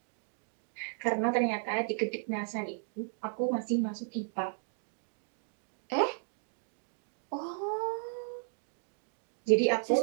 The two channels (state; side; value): silent; left; digital silence